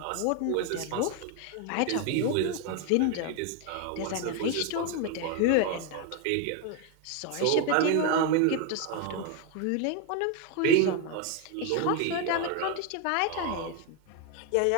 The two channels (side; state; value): both; different; correlation 0.01